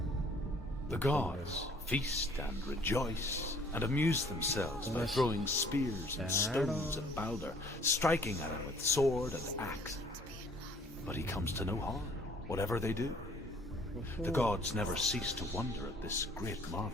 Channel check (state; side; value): normal; both; correlation 0.57